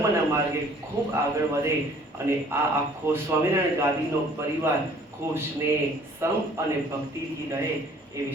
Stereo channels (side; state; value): both; normal; correlation 0.55